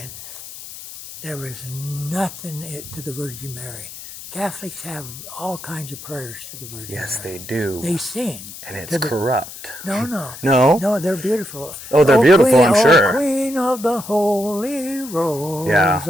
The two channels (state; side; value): noise; left; hiss, 13 dB below the sound